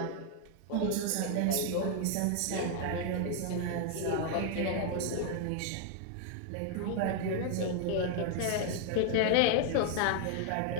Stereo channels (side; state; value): both; different; correlation 0.00